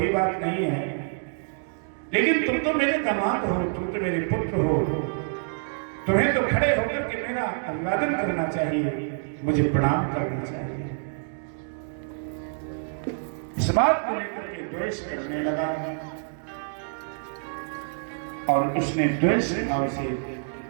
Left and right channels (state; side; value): silent; left; digital silence